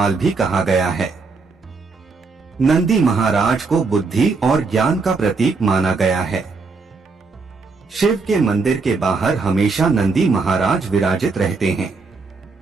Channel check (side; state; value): left; quieter; 4.3 dB